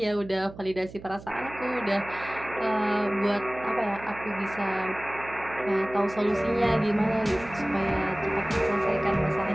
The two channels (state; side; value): noise; right; hum, 16 dB below the sound